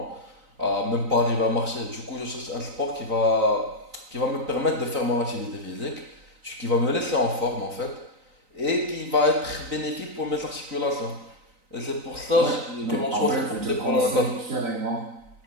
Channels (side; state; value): left; late; 3.9 ms